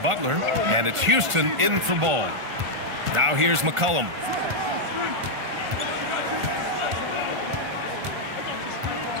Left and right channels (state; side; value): late; left; 1.5 ms